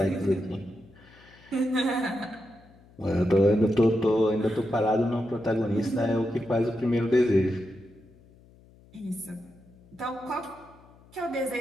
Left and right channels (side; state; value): left; noise; hum, 26 dB below the sound